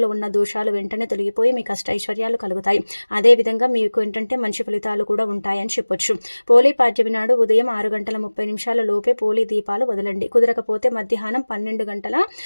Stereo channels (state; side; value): inverted; both; correlation -1.00